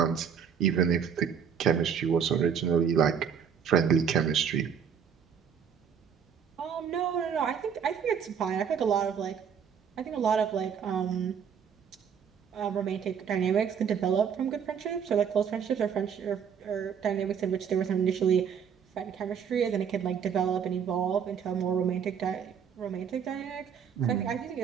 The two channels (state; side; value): quieter; left; 7.5 dB